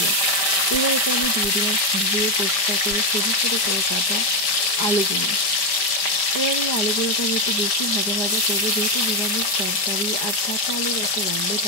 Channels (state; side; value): late; right; 5.0 ms